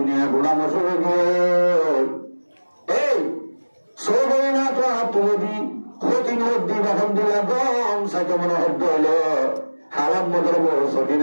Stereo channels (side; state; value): both; inverted; correlation -1.00